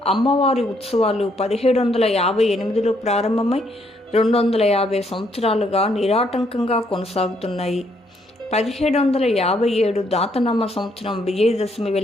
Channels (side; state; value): both; normal; correlation 0.71